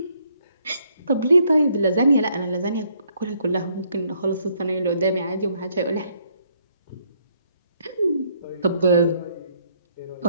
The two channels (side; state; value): both; inverted; correlation -0.69